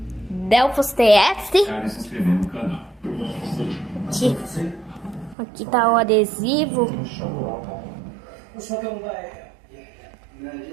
Delphos TF. Cara, se inscrever no canal. Aqui tá o adesivo.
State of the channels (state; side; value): drops out; left; at 5.4 s